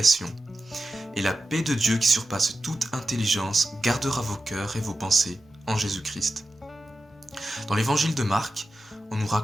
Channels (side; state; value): both; normal; correlation 0.92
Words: Et la paix de Dieu qui surpasse toute intelligence gardera vos cœurs et vos pensées en Jésus-Christ. Dans l'évangile de Marc, on nous